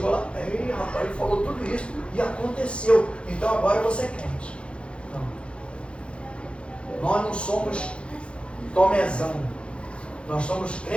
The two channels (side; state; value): right; late; 0.058 ms